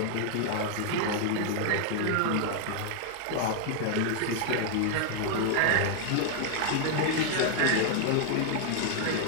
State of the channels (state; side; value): different; both; correlation 0.00